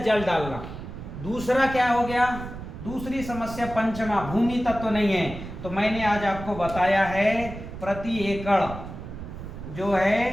डालना। दूसरा क्या हो गया? दूसरी समस्या पंचमा, भूमि तत्व नहीं है। तो मैंने आज आपको बताया है प्रति एकड़ जो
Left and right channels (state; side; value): noise; right; rumble, 10 dB below the sound